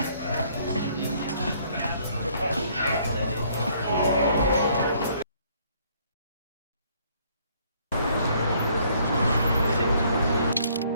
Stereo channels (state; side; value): inverted; both; correlation -0.64